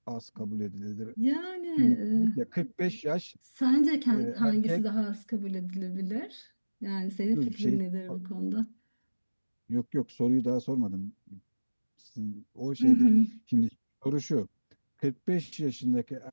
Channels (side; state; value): both; inverted; correlation -1.00